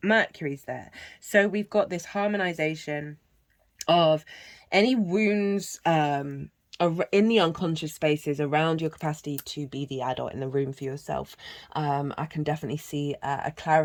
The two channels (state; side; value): identical; both; correlation 1.00